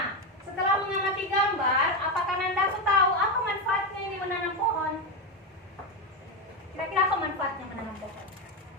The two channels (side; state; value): both; normal; correlation 0.10